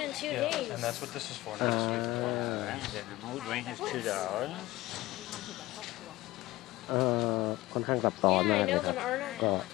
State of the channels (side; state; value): right; quieter; 18.5 dB